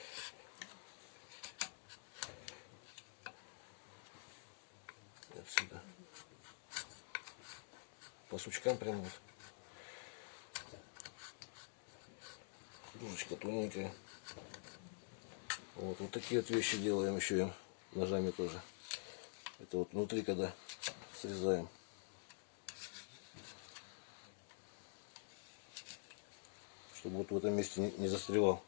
Отсюда. По сучкам прямо вот. Кружечка тоненькая. Вот такие вот вещи делаем еще им ножами тоже. Это вот внутри, когда срезаем. Чтобы вот в этом месте не застревал.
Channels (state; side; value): silent; right; digital silence